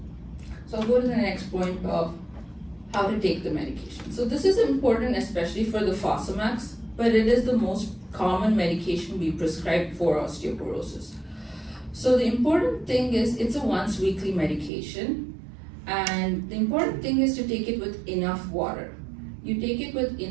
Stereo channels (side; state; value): left; drops out; at 14.7 s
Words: So I'll go to the next point of how to take the medication. So this is important especially for the Fosamax, but it is the most common medication we prescribe for osteoporosis. So the important thing is it's a once weekly medication, and the important thing is to take it with enough water. You take it with